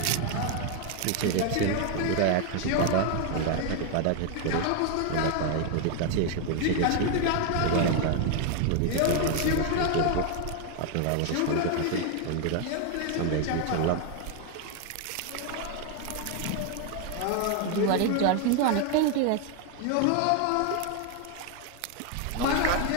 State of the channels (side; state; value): both; different; correlation 0.01